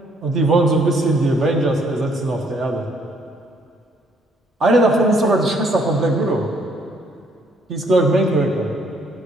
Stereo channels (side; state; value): both; normal; correlation 0.66